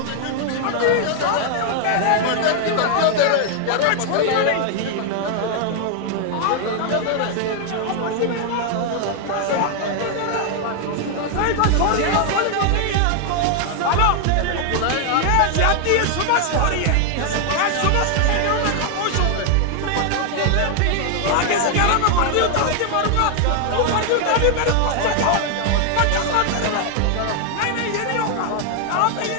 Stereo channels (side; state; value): both; different; correlation 0.00